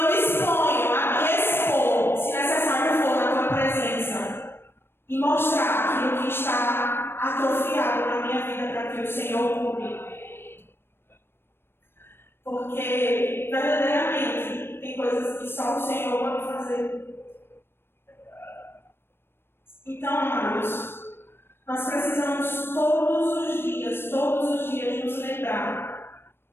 me disponho a me expor, se necessário for, na tua presença e mostrar aquilo que está atrofiado na minha vida para que o Senhor cure. Porque, verdadeiramente, tem coisas que só o Senhor pode fazer. Então, amados, nós precisamos todos os dias nos lembrar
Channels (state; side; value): late; right; 0.11 ms